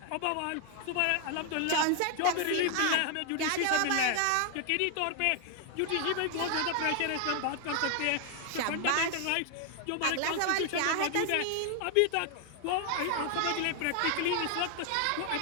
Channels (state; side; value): different; both; correlation 0.00